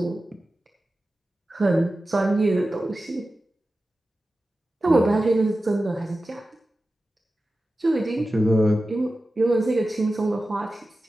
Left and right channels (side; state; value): both; normal; correlation 0.94